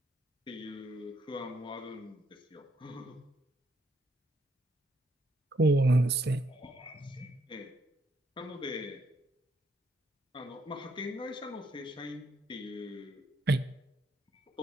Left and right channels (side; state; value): both; normal; correlation 0.73